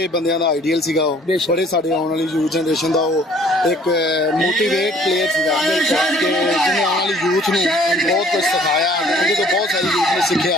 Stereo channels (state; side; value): normal; both; correlation 0.56